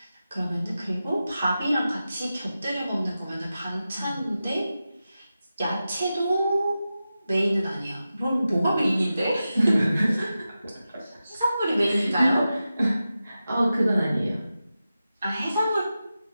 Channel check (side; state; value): both; inverted; correlation -0.92